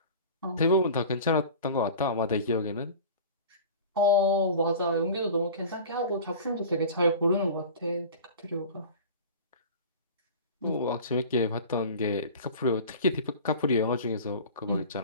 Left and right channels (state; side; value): inverted; both; correlation -0.37